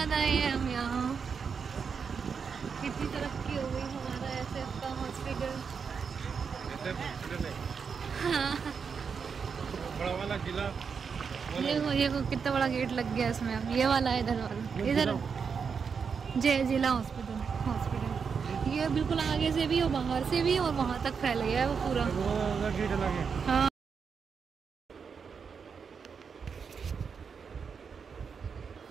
आए हैं हम यहाँ, कितनी तरक्की हो गई हमारा एसएफ का हॉस्पिटल। हाँ। बड़ा वाला जिला, ये कितना बड़ा गेट लग गया इसमें। अब ये वाला है, इधर वाला, इधर जय जिला हॉस्पिटल ये बिल्कुल आगे से भी और बाहर से भी, और वहाँ तक फैल गया है वो पूरा। हाँ।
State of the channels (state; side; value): quieter; left; 6.1 dB